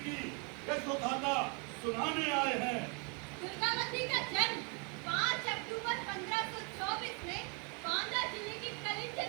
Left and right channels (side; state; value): left; quieter; 34.8 dB